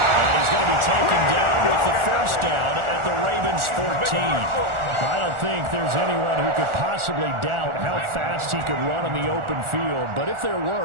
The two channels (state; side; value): late; left; 1.4 ms